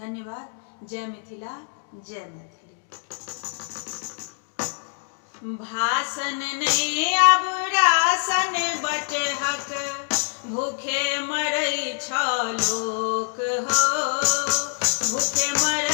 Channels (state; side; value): silent; right; digital silence